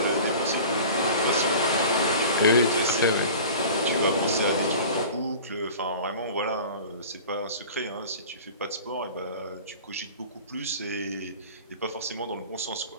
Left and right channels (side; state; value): both; inverted; correlation -0.40